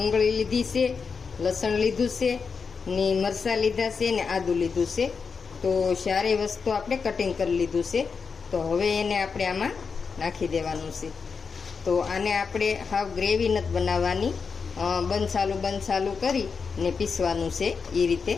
લીધી છે, લસણ લીધું છે ને મરચાં લીધા છે ને આદું લીધું છે. તો સારી વસ્તુ આપણે કટિંગ કરી લીધું છે. તો હવે એને આપણે આમાં નાખી દેવાનું છે. તો આને આપણે હાવ ગ્રેવી નથી બનાવવાની, બંધ કરી ને પીસવાનું છે એ રીતે.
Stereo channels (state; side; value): quieter; right; 5.4 dB